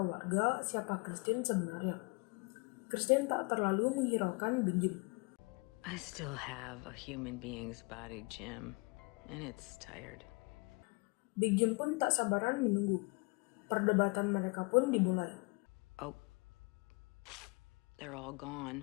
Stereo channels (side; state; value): right; quieter; 30.5 dB